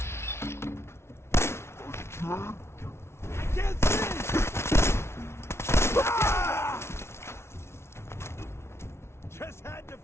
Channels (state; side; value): late; right; 0.13 ms